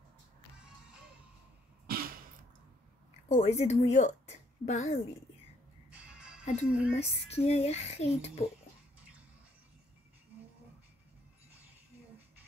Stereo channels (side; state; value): both; normal; correlation 0.69